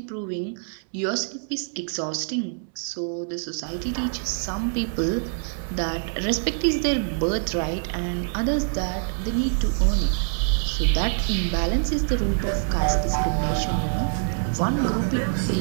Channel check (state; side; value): silent; left; digital silence